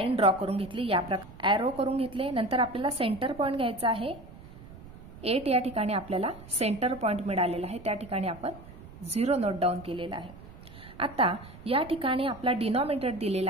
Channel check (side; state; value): right; noise; rumble, 17 dB below the sound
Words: ड्रॉ करून घेतली। या प्रकारे ॲरो करून घेतले। नंतर आपल्याला सेंटर पॉइंट घ्यायचा आहे। 8 या ठिकाणी आपल्याला सेंटर पॉइंट मिळालेला आहे त्या ठिकाणी आपण 0 नोट डाऊन केलेला आहे। आता या ठिकाणी आपला डिनॉमिनेटर दिलेला